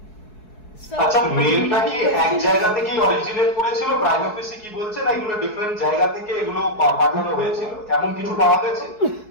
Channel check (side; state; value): right; late; 4.7 ms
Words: আচ্ছা, মেলটা কি এক জায়গা থেকেই অরিজিনেট করেছিল, প্রাইম অফিসে কি বলছে, না এগুলো ডিফারেন্ট জায়গা থেকে এগুলো পাঠানো হয়েছিল, এমন কিছু পাওয়া গেছে?